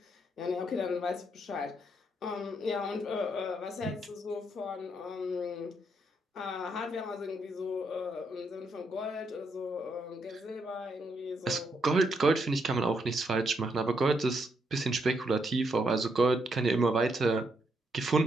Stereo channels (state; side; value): normal; both; correlation 0.77